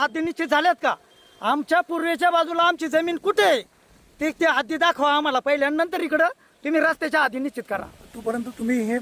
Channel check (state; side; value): identical; both; correlation 1.00